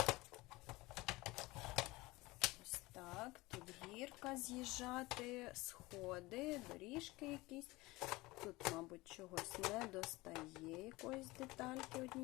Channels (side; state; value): right; quieter; 21.2 dB